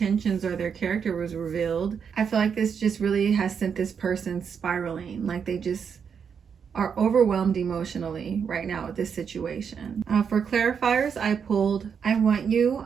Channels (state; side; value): quieter; left; 6.9 dB